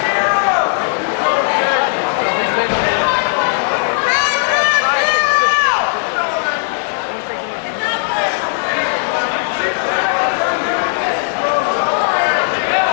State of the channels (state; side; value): silent; right; 69 dB below the other